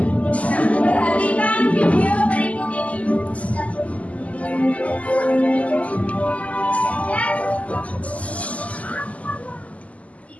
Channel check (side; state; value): right; late; 0.069 ms